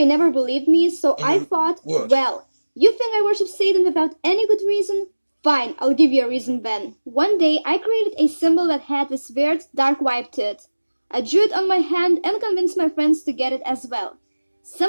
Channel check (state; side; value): inverted; both; correlation -1.00